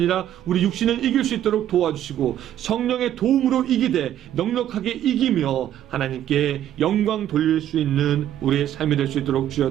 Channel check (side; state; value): left; quieter; 11.4 dB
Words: 우리 육신을 이길 수 있도록 도와주시고 성령의 도움으로 이기되 넉넉하게 이기며 하나님께 영광 돌릴 수 있는 우리의 삶이 될 수 있도록